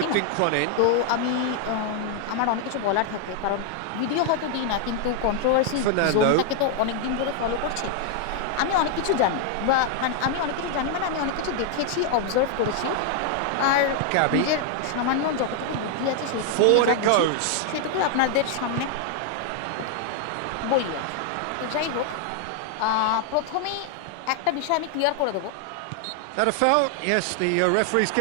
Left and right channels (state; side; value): different; both; correlation 0.00